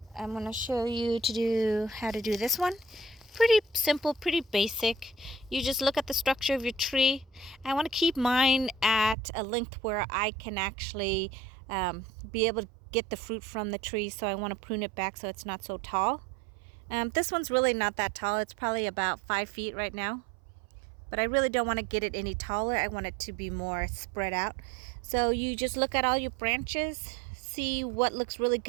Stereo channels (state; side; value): drops out; left; at 9.2 s